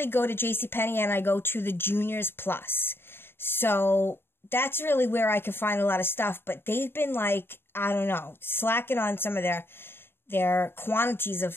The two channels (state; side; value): late; right; 0.11 ms